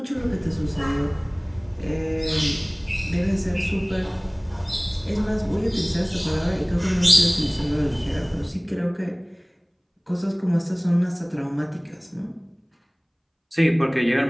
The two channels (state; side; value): identical; both; correlation 1.00